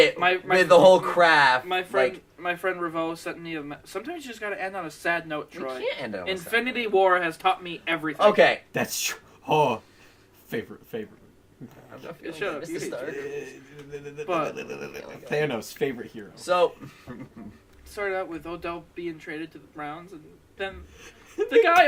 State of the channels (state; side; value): identical; both; correlation 1.00